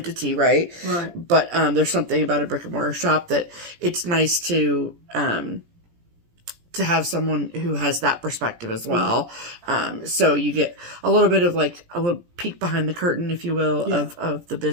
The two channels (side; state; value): left; late; 17 ms